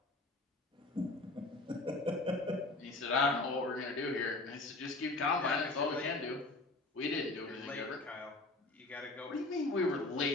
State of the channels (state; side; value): quieter; right; 3.1 dB